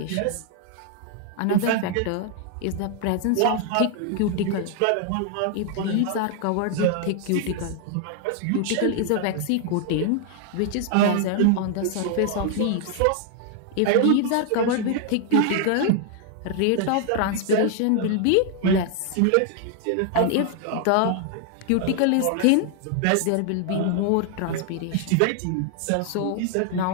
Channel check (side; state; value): both; different; correlation 0.00